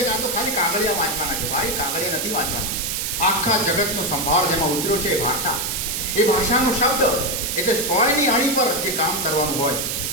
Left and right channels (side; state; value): right; noise; hiss, 1 dB below the sound